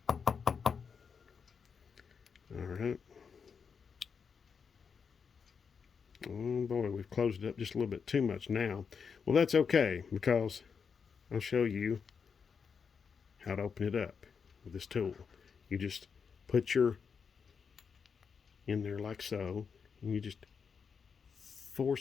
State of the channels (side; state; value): right; quieter; 6.1 dB